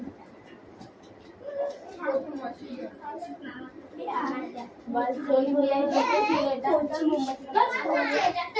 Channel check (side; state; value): both; identical; correlation 1.00